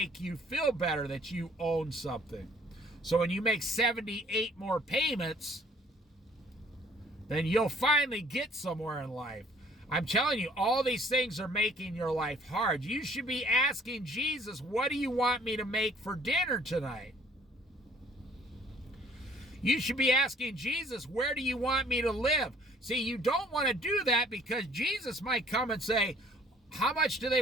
you feel better that you own something. So when you make 78 more payments, then you'll finally get somewhere in life. I'm telling you, all these things are making your life hard. You should be asking Jesus, what do you want me to make for dinner tonight? You should be asking Jesus, where do you want me to live? See, you don't want to do that because Jesus might come and say, how much do they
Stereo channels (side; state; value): both; normal; correlation 0.57